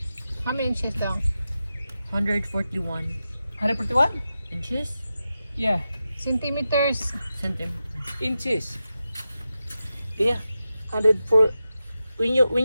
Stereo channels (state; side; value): inverted; both; correlation -0.91